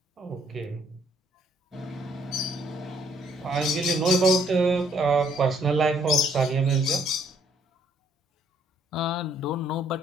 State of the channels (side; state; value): both; normal; correlation 0.66